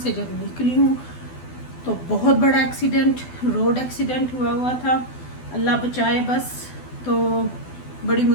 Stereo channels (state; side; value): late; right; 12 ms